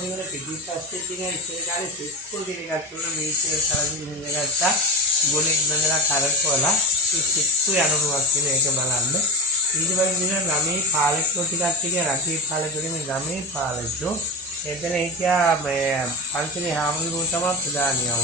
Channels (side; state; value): both; normal; correlation 0.19